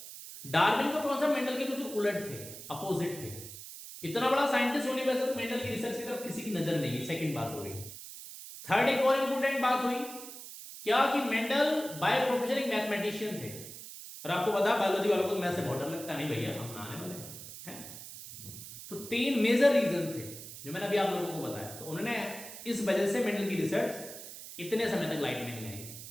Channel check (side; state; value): right; noise; hiss, 12 dB below the sound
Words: डार्विन का कॉन्सेप्ट मेंडल के बिल्कुल उलट थे, अपोजिट थे। इतना बड़ा साइंटिस्ट होने पर मेंडल की रिसर्च की तरफ किसी की नजर नहीं। सेकंड बात हो गई। थर्ड एक और इंपोर्टेंट बात हुई क्या कि मेंडल बाय प्रोफेशन एक मैथमेटिशियन थे, और आपको पता है बायोलॉजी वालों को मैथ से बहुत डर लगता नहीं, भैया हम ना आने वाले हैं। तो 3 मेजर रीजन थे जो मैंने अभी आप लोगों को बताया। तो उन्होंने इस वजह से मेंडल की रिसर्च इतने समय तक लाइट में नहीं आई।